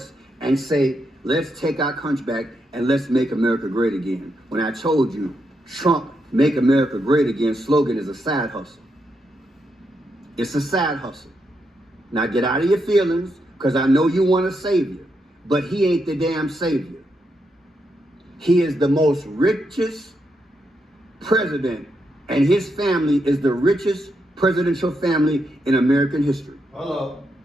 and say, let's take our country back and let's make America great again. When I told you, Trump make America great again slogan is a side hustle. It's a side hustle. Now get out of your feelings, because I know you want a savior, but he ain't the damn savior. He is the most richest president, and his family is the richest presidential family in American history. Hello.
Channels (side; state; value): both; normal; correlation 0.82